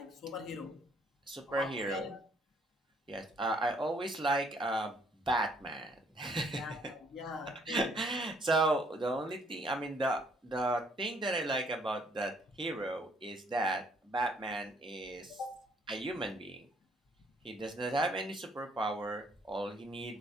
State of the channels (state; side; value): normal; both; correlation 0.65